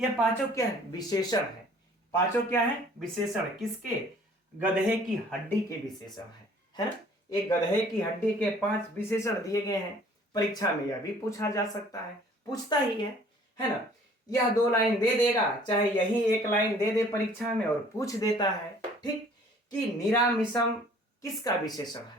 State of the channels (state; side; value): normal; both; correlation 0.54